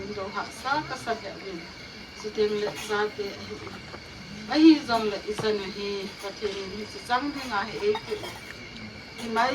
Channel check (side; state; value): both; identical; correlation 1.00